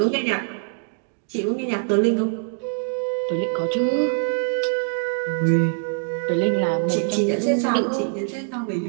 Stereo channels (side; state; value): left; silent; digital silence